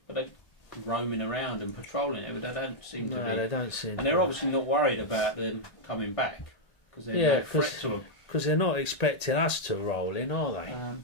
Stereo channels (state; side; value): late; right; 1.8 ms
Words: roaming around and patrolling it, but they don't seem to be. they don't seem. And they're obviously not worried about them coming back because they're Yeah, no threat to them. because they're not expecting us to roll in, are they?